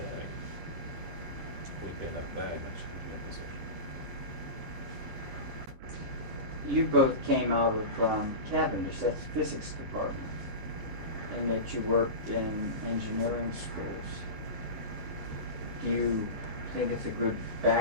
we'd be in a very much happier position. You both came out of Cavendish, that's the physics department, and that you worked in engineering schools. Do you think it's a good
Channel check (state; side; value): late; left; 9.8 ms